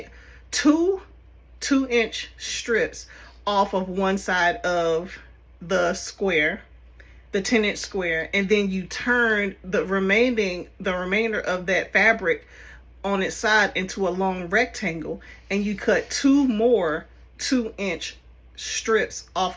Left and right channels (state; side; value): identical; both; correlation 1.00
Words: 2-inch strips off of one side of the square, the 10-inch square, and then you turn the remainder of that fabric on its side into a long rectangle, and you cut 2 more 2-inch strips off